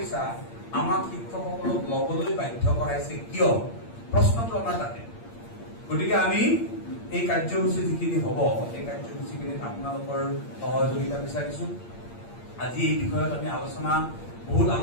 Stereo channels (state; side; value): late; right; 8.7 ms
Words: আমাক শিক্ষকসকলক ল'বলৈ বাধ্য কৰাইছে কিয়, প্ৰশ্নটো আমাৰ তাতে। গতিকে আমি এই কাৰ্যসূচী যিখিনি হ'ব, এই কাৰ্যসূচীখিনিত আপোনালোকৰ সহযোগিতা বিচাৰিছোঁ। আজি এই বিষয়ত আমি বহুত